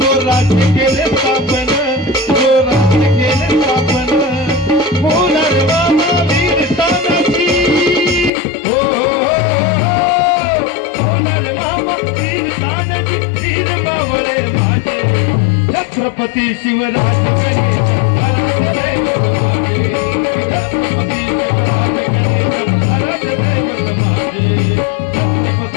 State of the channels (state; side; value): drops out; right; at 8.3 s